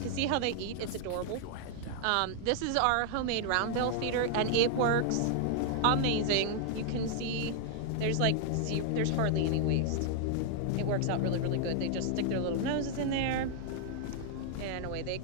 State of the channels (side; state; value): both; different; correlation 0.00